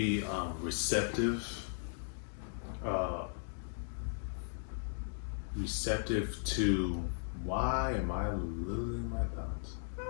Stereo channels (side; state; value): right; silent; digital silence